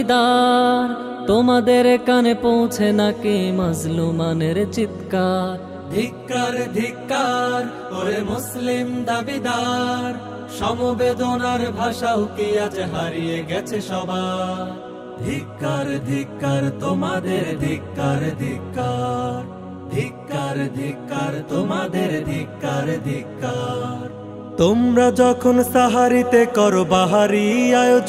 তোমাদের কানে পৌঁছে নাকি মাজলুমানের চিৎকার। ধিক্কার ধিক্কার ওরে মুসলিম দাবিদার, সমবেদনার ভাষাও কি আজ হারিয়ে গেছে সবার। ধিক্কার ধিক্কার তোমাদের ধিক্কার ধিক্কার, ধিক্কার ধিক্কার তোমাদের ধিক্কার ধিক্কার। তোমরা যখন সাহারিতে করো বাহারি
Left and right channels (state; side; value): identical; both; correlation 1.00